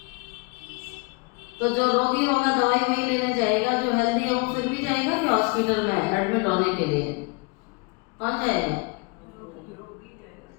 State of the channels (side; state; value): right; quieter; 29.0 dB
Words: तो जो रोगी होगा दवाई वही लेने जाएगा, जो हेल्दी है वो फिर भी जाएगा कि हॉस्पिटल में एडमिट होने के लिए? कौन जाएगा?